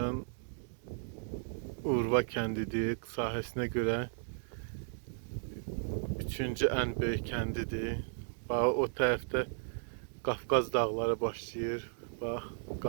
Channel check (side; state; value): left; silent; digital silence